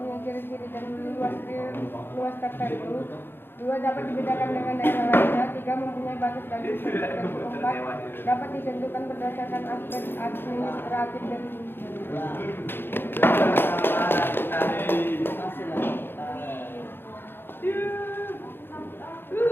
ciri-ciri dan luas tertentu. 2. Dapat dibedakan dengan daerah lainnya. 3. Mempunyai batas dan struktur tertentu. 4. Dapat ditentukan berdasarkan aspek administratif dan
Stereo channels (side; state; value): right; late; 0.10 ms